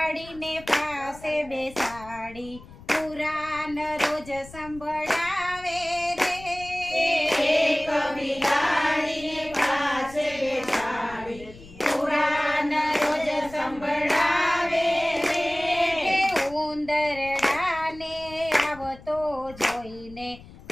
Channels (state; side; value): noise; left; rumble, 19 dB below the sound